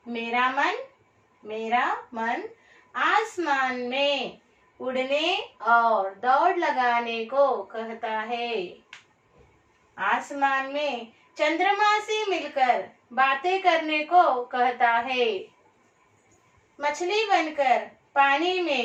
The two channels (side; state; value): both; identical; correlation 1.00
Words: मेरा मन आसमान में उड़ने और दौड़ लगाने को कहता है। आसमान में चंद्रमा से मिलकर बातें करने को कहता है। मछली बनकर पानी